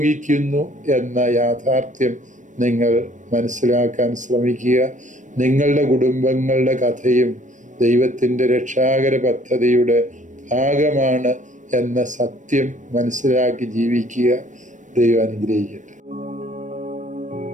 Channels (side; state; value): left; late; 0.36 ms